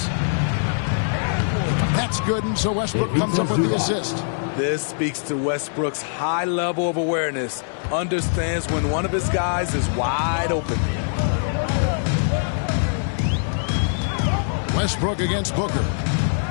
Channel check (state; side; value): silent; right; digital silence